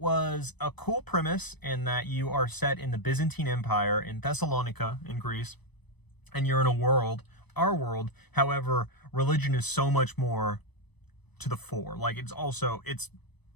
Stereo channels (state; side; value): late; right; 0.99 ms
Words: a cool premise in that you are set in the Byzantine Empire in Thessalonica in Greece, and you're in a world our world. However, religion is so much more to the fore. Like, it's